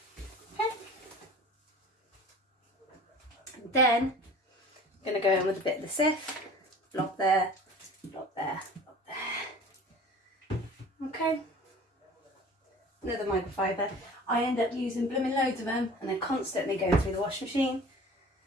Then I'm going to go in with a bit of the Ciff, blob there, blob there, blob there. Okay, another microfiber. I end up using blooming loads of them, and they're constantly going through the washing machine,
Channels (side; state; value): both; normal; correlation 0.43